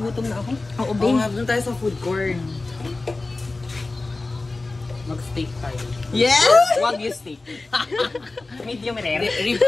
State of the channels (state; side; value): quieter; right; 3.3 dB